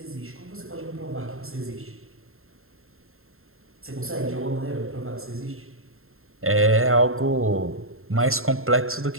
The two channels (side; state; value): left; late; 0.61 ms